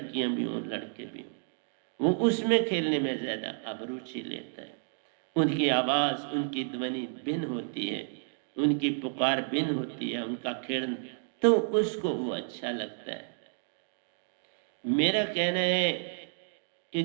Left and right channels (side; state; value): left; silent; digital silence